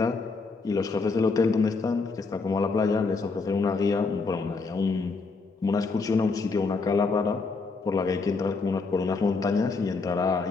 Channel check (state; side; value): quieter; right; 4.2 dB